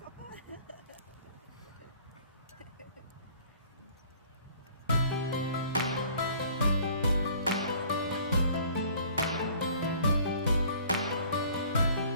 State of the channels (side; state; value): both; inverted; correlation -0.53